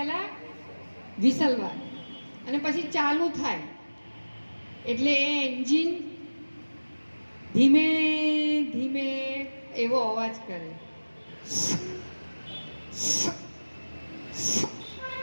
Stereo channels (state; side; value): inverted; both; correlation -1.00